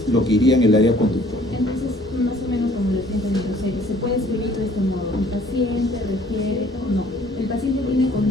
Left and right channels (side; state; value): both; normal; correlation 0.56